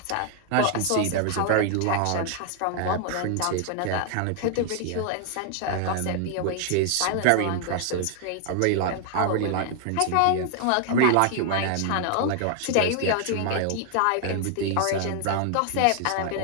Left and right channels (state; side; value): different; both; correlation 0.00